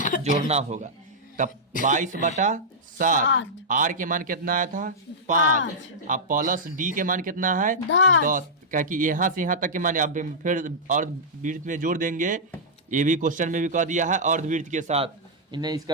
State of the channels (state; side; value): normal; both; correlation -0.10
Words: जोड़ना होगा। तब 22/7, आर के मान कितना आया था 5, अब प्लस डी के मान कितना है 10, क्या कि यहाँ से यहाँ तक के मान अब फिर अर्धवृत्त में जोड़ देंगे, ये भी क्वेश्चन में भी कह दिया है अर्धवृत्त के साथ, इन्हें